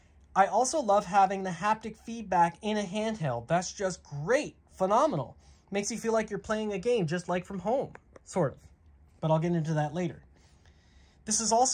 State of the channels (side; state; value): both; identical; correlation 1.00